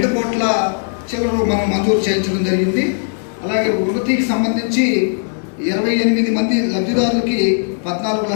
కోట్ల చిల్లర మనం మంజూరు చేయించడం జరిగింది. అలాగే వృత్తికి సంబంధించి 28 మంది లబ్ధిదారులకి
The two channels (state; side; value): silent; right; digital silence